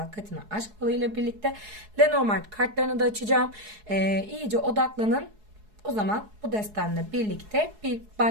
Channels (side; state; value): left; late; 4.7 ms